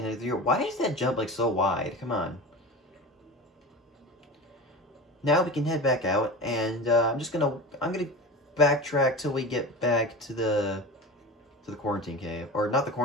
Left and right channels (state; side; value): normal; both; correlation 0.30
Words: through. Why is that jump, like, so wide? Come on. Now we can head back out, and, I'm gonna backtrack till we get back to the quarantine cave. Or, not the